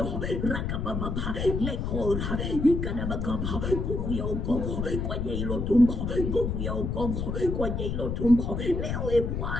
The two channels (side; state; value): left; noise; rumble, 2 dB below the sound